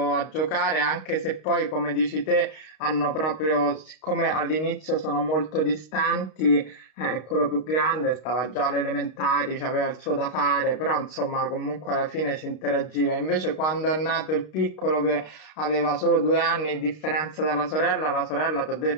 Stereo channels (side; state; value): right; late; 32 ms